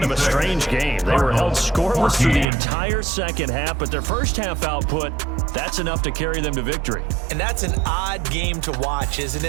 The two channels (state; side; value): drops out; left; at 2.5 s